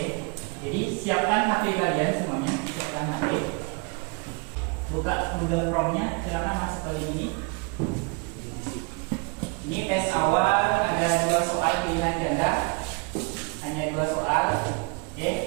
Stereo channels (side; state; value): left; quieter; 32.8 dB